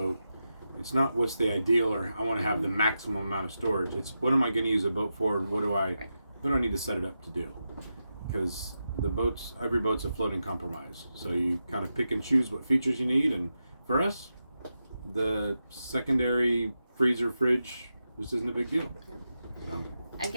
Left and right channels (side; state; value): both; inverted; correlation -0.89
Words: It's not what's the ideal or I want to have the maximum amount of storage. It's what am I going to use a boat for, and what do I need to set it up to do? Because every boat's a floating compromise. So you kind of pick and choose what features you need. And for us, the secondary freezer fridge just isn't a big deal. So.